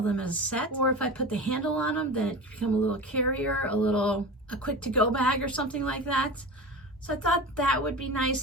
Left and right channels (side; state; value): both; normal; correlation 0.30